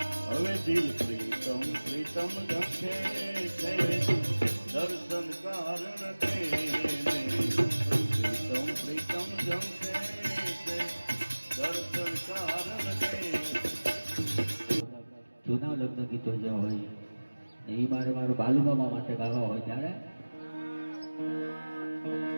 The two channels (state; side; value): inverted; both; correlation -1.00